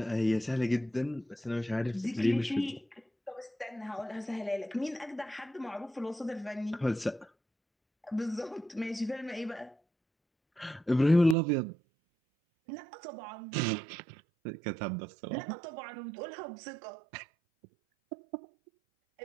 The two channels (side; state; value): left; drops out; at 11.4 s